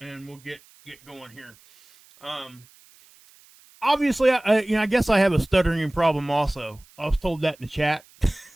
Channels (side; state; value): right; noise; hiss, 28 dB below the sound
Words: get going here. Obviously, I guess I have a stuttering problem also. I was told that in the chat.